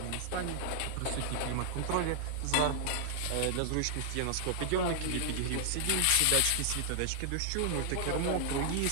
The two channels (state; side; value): different; both; correlation -0.01